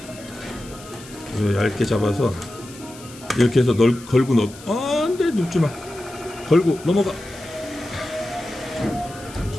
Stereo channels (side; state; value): left; noise; hiss, 19 dB below the sound